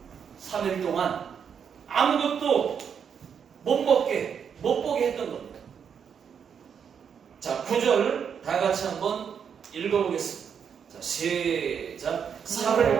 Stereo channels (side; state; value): left; quieter; 7.3 dB